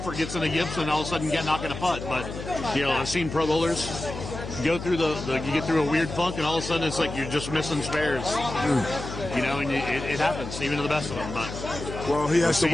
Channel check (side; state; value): left; noise; hum, 8 dB below the sound